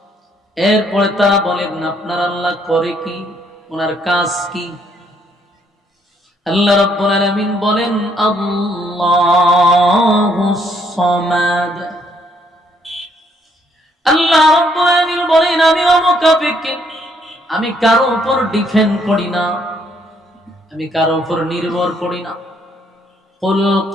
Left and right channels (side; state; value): both; normal; correlation 0.69